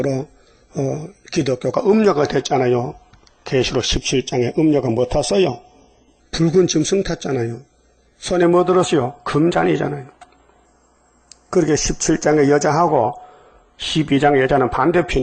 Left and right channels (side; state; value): both; identical; correlation 1.00